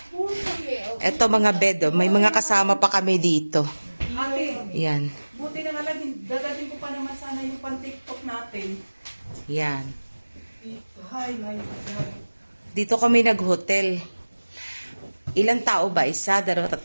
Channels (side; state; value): both; inverted; correlation -1.00